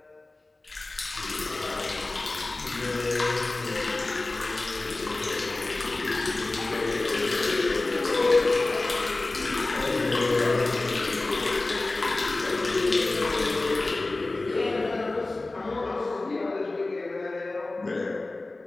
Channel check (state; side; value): quieter; right; 3.1 dB